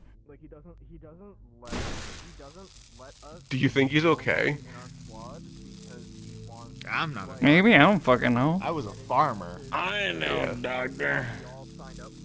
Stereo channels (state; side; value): identical; both; correlation 1.00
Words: Like he doesn't let us. Do you think he's okay? I'm not. Maybe, I don't fucking know. I was a farmer. I know, doctor.